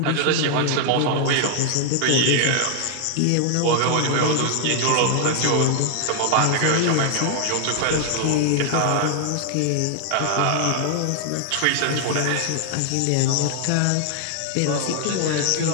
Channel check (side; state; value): both; different; correlation 0.00